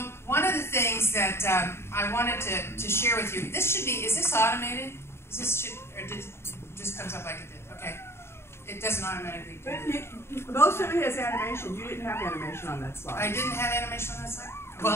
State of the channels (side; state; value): right; late; 0.12 ms